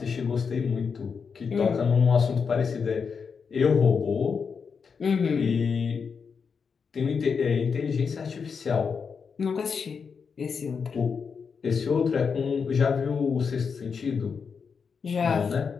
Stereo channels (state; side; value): quieter; right; 5.9 dB